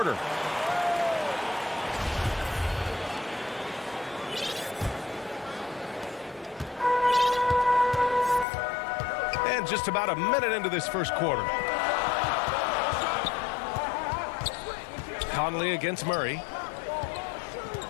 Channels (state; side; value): drops out; right; at 8.5 s